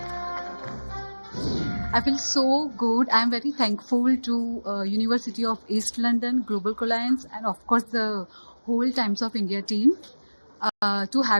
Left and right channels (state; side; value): inverted; both; correlation -1.00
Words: I feel so good. I'm very thankful to University of East London, Global Alliance, and of course the whole Times of India team to